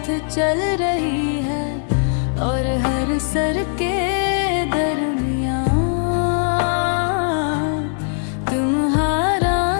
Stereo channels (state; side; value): silent; right; digital silence